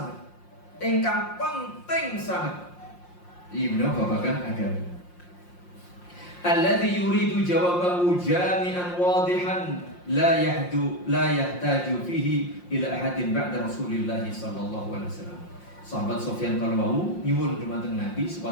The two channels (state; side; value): late; right; 5.6 ms